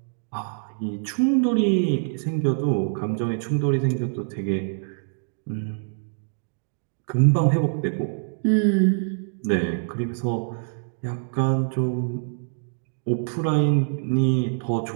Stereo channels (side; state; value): left; silent; digital silence